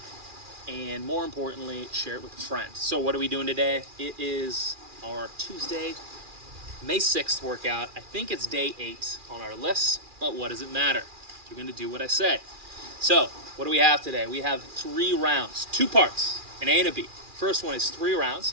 and more importantly, share it with a friend. So what are we doing today? It is our Tuesday, May 6th workout. I think it's day 8 on our list, but what does it matter? You're going to do what I say. So, what do we have today? We have 3 rounds, 2 parts, an A and a B. First one is 3 rounds,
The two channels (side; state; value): left; late; 2.4 ms